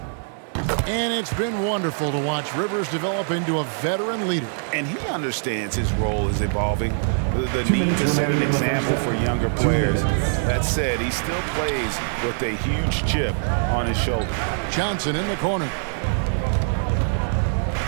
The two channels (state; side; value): silent; left; 56 dB below the other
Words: And it's been wonderful to watch Rivers develop into a veteran leader. And he understands his role is evolving. The need to set an example for younger players. That said, he still plays with a huge chip on his shoulder. Johnson in the corner.